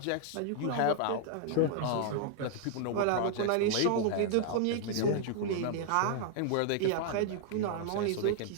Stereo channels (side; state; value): both; different; correlation -0.01